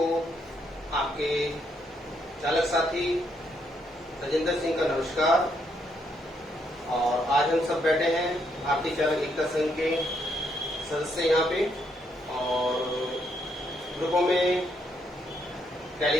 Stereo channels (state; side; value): normal; both; correlation 0.75